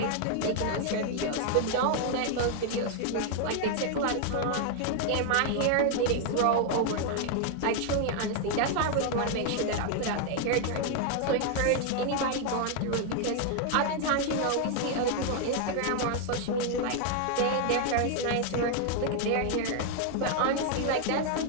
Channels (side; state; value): both; different; correlation 0.00